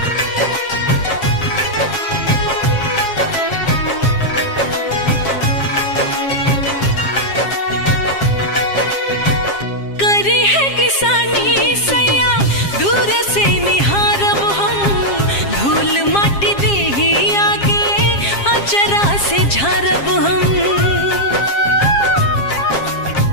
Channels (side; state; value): right; late; 7.4 ms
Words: से झारब हम।